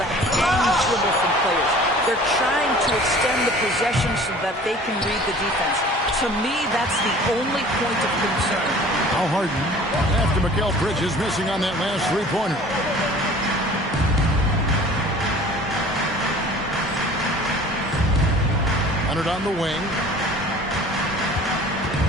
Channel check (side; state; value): both; normal; correlation 0.47